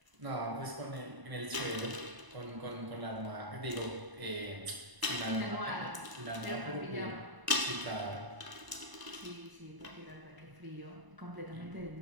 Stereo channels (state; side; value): late; left; 1.0 ms